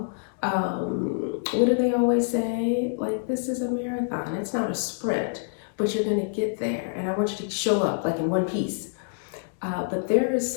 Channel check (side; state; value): right; silent; digital silence